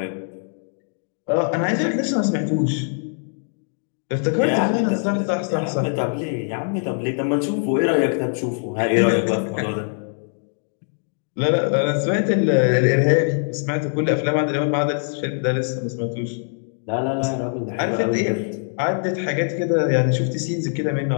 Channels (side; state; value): right; silent; digital silence